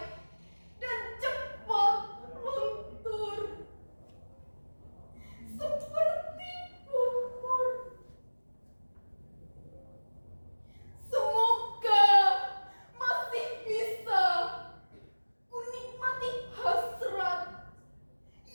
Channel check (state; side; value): inverted; both; correlation -1.00